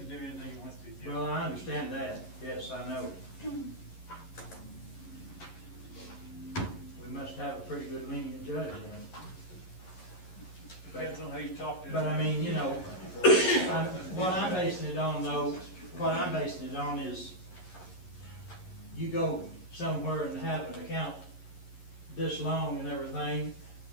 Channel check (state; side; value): late; right; 11 ms